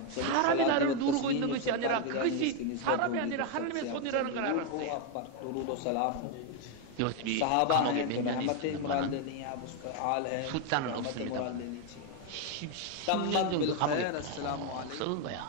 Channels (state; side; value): different; both; correlation 0.01